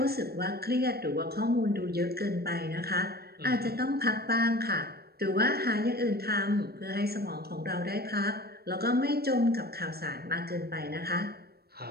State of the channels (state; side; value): late; left; 0.46 ms